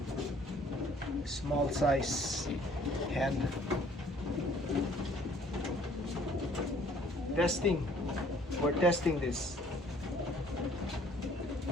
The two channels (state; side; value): normal; both; correlation 0.57